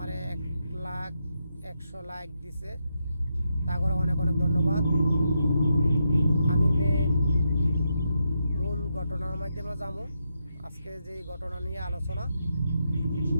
1,00,100 লাইক দিছে, তাগরে অনেক অনেক ধন্যবাদ। আমি মূল ঘটনার মাধ্যমে যাবো। আজকে যে ঘটনা নিয়ে আলোচনা,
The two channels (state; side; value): inverted; both; correlation -0.83